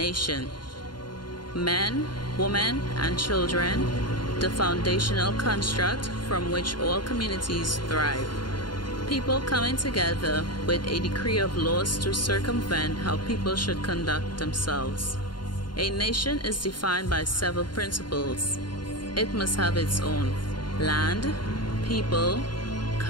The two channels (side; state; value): right; late; 0.71 ms